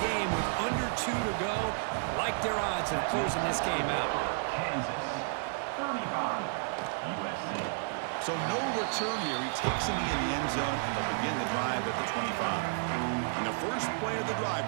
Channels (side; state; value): left; silent; digital silence